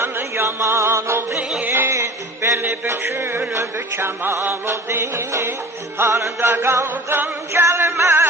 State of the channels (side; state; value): both; normal; correlation 0.40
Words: yaman oldu. Beni bükülüp keman oldu, harda kaldın